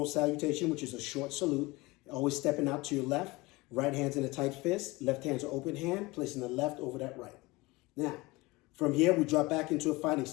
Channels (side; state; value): right; quieter; 22.2 dB